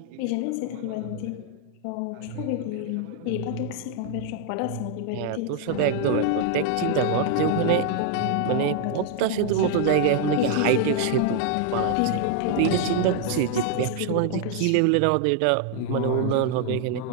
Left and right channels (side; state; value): both; different; correlation 0.00